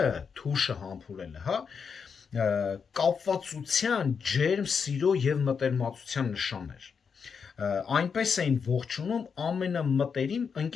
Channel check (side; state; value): right; quieter; 6.2 dB